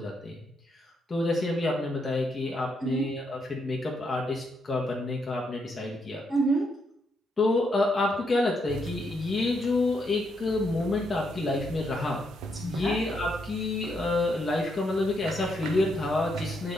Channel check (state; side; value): normal; both; correlation 0.78